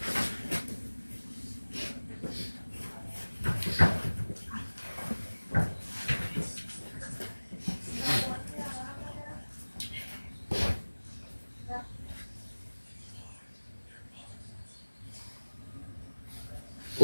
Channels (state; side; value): inverted; both; correlation -1.00